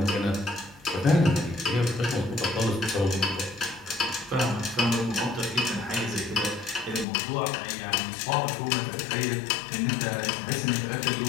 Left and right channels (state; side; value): drops out; right; at 7.1 s